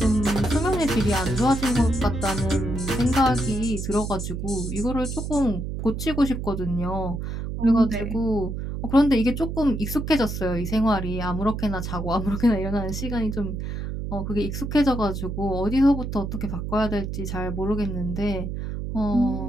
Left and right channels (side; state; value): right; noise; hum, 5 dB below the sound